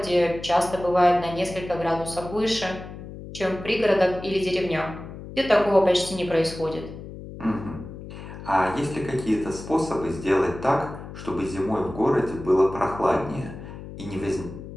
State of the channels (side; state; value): left; noise; hum, 12 dB below the sound